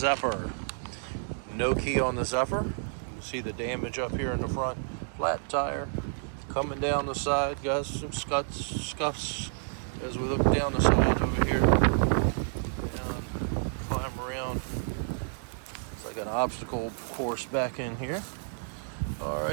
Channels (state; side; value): silent; left; digital silence